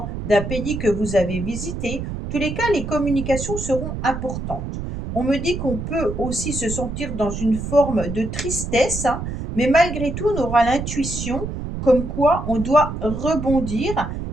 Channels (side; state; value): right; noise; rumble, 6 dB below the sound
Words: d'un pays que vous avez visité. En tous les cas, les communications seront importantes. On me dit qu'on peut aussi se sentir dans une forme de tristesse, mais malgré tout, on aura l'intuition comme quoi on doit rebondir